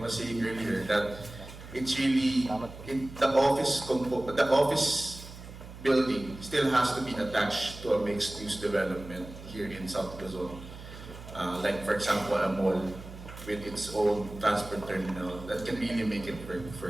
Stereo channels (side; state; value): right; noise; hum, 14 dB below the sound